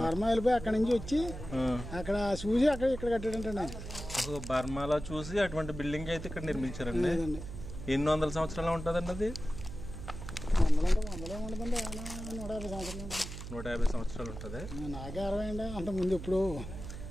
వెళ్ళిపోయి అక్కడ నుంచి వచ్చి అక్కడ చూసి అక్కడ ఇక్కడ కట్టాడంటే బర్మాలో చూసి అటువంటి బిల్డింగ్ అయితే ఇక్కడ నిర్మించారండి. ఎన్ని వందల సంవత్సరాలు ఉంటుందండి అది? 150 సంవత్సరాలు ఉంటుంది. నాకే 60 అండి. అంత ముందు ఇప్పుడు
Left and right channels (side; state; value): right; noise; hum, 9 dB below the sound